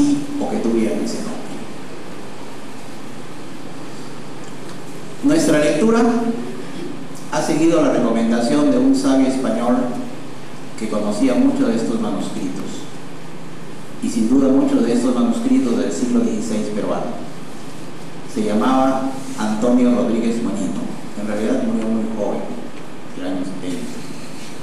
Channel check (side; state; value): both; identical; correlation 1.00